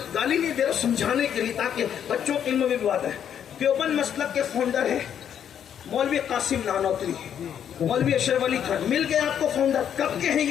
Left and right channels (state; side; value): quieter; right; 9.0 dB